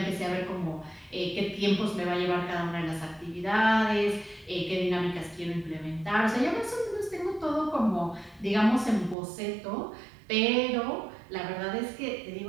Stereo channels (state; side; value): drops out; left; at 9.2 s